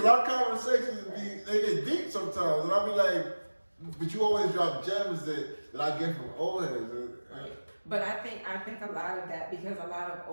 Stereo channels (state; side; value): inverted; both; correlation -1.00